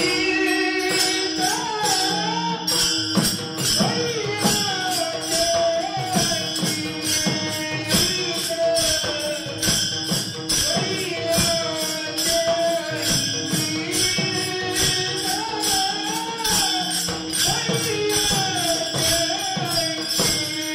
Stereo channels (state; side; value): identical; both; correlation 1.00